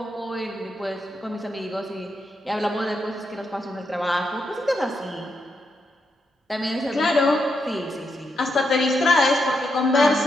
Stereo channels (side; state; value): both; normal; correlation 0.82